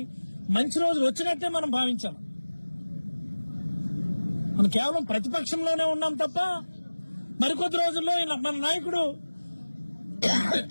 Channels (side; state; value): both; inverted; correlation -1.00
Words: మంచి రోజులు వచ్చినట్టే మనం భావించాలి. మనం కేవలం ప్రతిపక్షంలోనే ఉన్నాం తప్ప మరికొద్ది రోజుల్లో మన నాయకుడు